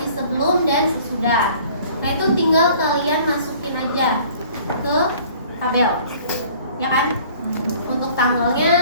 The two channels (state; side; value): inverted; both; correlation -0.52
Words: sebelum dan sesudah. Nah, itu tinggal kalian masukin aja ke tabel, ya kan? Untuk